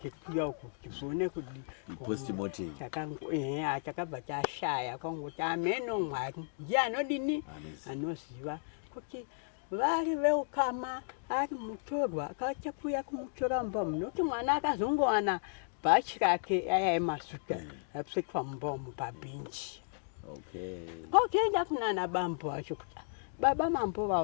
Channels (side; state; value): right; silent; digital silence